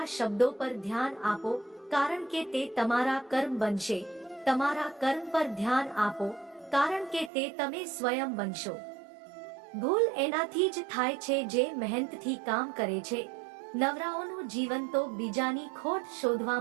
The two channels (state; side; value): drops out; left; at 7.3 s